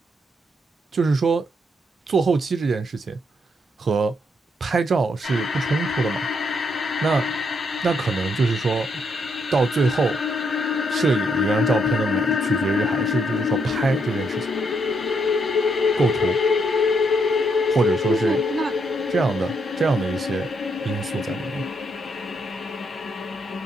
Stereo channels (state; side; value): normal; both; correlation 0.76